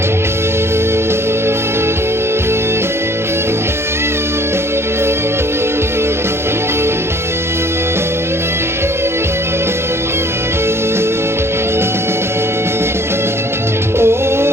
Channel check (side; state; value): left; late; 0.12 ms